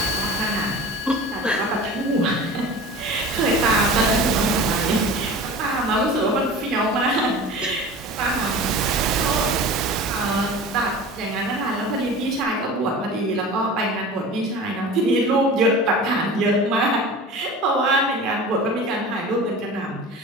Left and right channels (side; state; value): both; normal; correlation 0.36